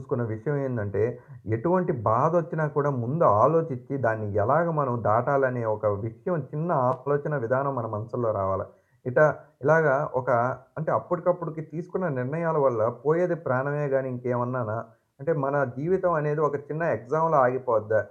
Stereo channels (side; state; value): both; identical; correlation 1.00